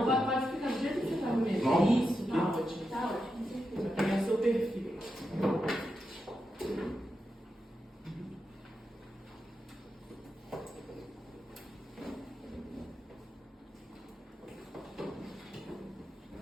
pra- pode ficar do jeito que você tá mesmo. Não. Isso, tá ótimo. Tá ótimo. Vai pegar seu perfil.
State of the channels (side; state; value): both; normal; correlation 0.87